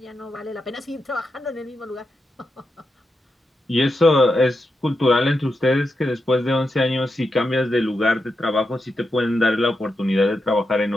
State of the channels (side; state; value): both; normal; correlation 0.87